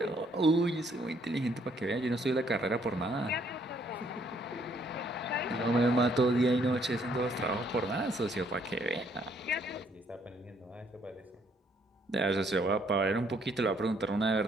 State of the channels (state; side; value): normal; both; correlation 0.67